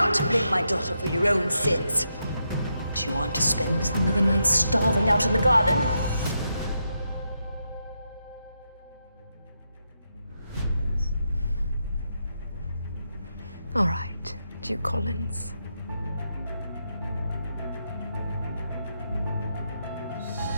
blame my daughter for your own sins. Do you want to spend another night starving out in the garden? All right, Duke Collins.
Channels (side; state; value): both; inverted; correlation -0.83